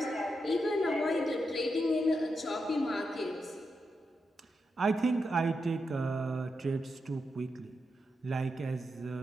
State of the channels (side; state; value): both; normal; correlation 0.86